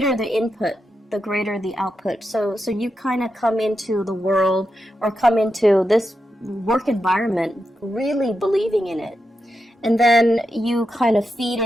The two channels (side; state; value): both; normal; correlation 0.87